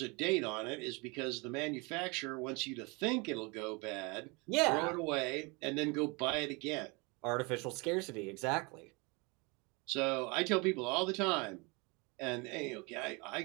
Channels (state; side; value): quieter; left; 28.6 dB